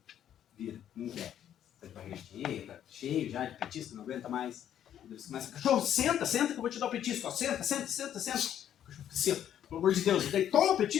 vira, não quer. Tá de barriga cheia, tá cheio já de petisco, não aguenta mais. Daí você começa, cachorro, senta que eu vou te dar o petisco. Ó, senta. O cachorro fica assim, pelo amor de Deus. Daí toma o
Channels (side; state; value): right; quieter; 10.3 dB